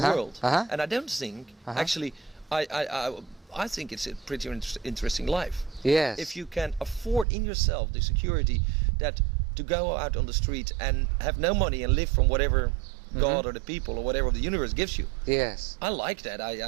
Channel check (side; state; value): left; drops out; at 7.2 s